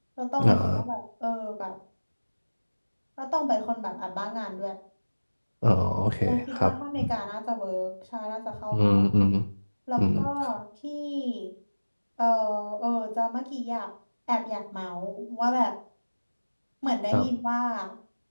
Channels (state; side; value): inverted; both; correlation -1.00